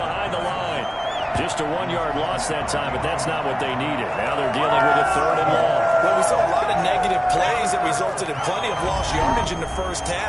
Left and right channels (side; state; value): both; identical; correlation 1.00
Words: the line. Just a 1-yard loss that time, but that's not what they needed. Now they're dealing with a 3rd and long. Well, we saw a lot of negative plays that resulted in plenty of lost yardage in the first